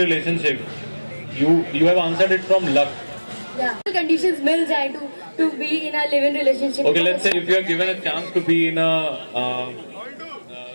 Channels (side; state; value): both; inverted; correlation -1.00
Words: You have answered it from luck. Yeah. Conditions मिल जाए to be in a live-in relationship. Okay, let's say if you are given a chance to be in a